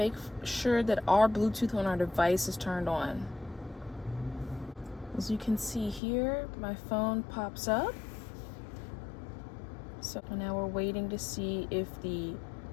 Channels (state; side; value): drops out; right; at 6.0 s